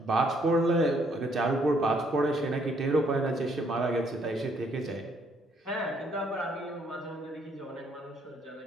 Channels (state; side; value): normal; both; correlation 0.69